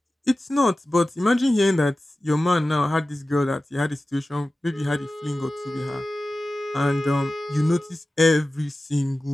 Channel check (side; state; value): both; normal; correlation 0.95